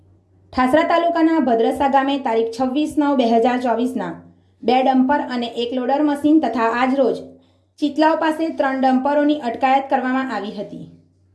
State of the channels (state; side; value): identical; both; correlation 1.00